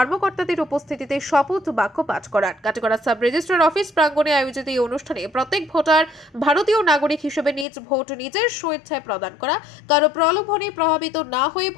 উপস্থিতিতে শপথ বাক্য পাঠ করান। কাটিগড়া সাব রেজিস্ট্রার অফিস প্রাঙ্গণে আয়োজিত এই অনুষ্ঠানে প্রত্যেক ভোটার ভারতীয় নাগরিক হিসেবে নিজ ভোট নিজের স্বেচ্ছায় প্রদান করা, কারো প্রলোভনে প্রভাবিত না হয়ে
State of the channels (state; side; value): drops out; right; at 7.7 s